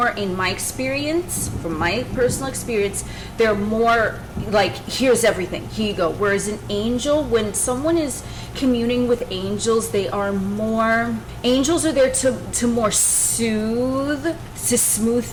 in my experience, from my personal experience, they're more like, here's everything, here you go. Whereas an angel, when someone is communing with angels, they are more, angels are there to more soothe, to smooth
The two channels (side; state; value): both; identical; correlation 1.00